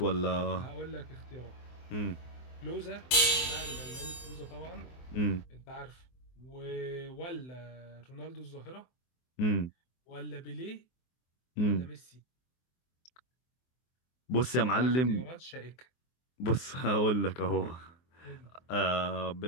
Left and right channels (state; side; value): late; right; 24 ms